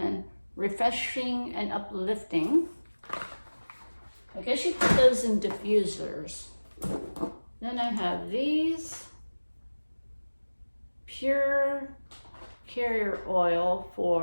refreshing and uplifting. I guess you put those in diffusers. Then I have these pure carrier oil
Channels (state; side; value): inverted; both; correlation -1.00